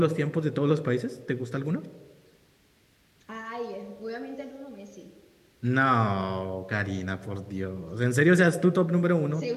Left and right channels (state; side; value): identical; both; correlation 1.00